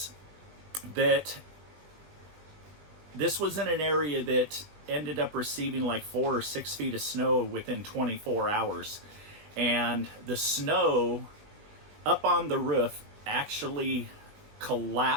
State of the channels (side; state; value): left; late; 20 ms